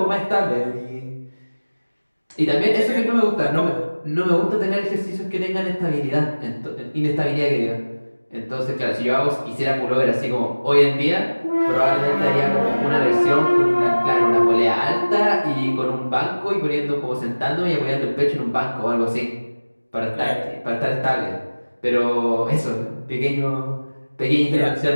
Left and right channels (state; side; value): inverted; both; correlation -1.00